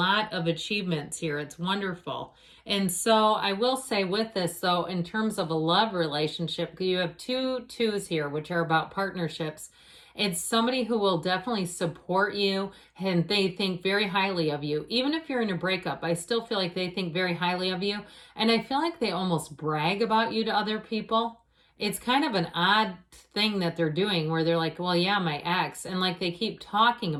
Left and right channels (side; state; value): both; identical; correlation 1.00